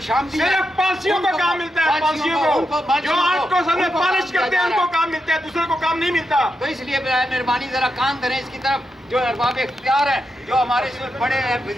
सिर्फ पांसियों को काम मिलता है, पांसियों को जो आर्ट को सामने पॉलिश करते हैं उनको काम मिलता है, दूसरे को काम नहीं मिलता। तो इसलिए मेहरबानी जरा कान धरें इसकी तरफ। जो अरबाब इख्तियार हैं, जो हमारे इसमें बड़े हैं,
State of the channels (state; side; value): normal; both; correlation 0.85